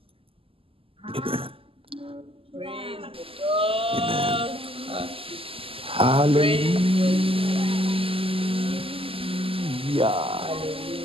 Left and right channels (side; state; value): left; late; 0.26 ms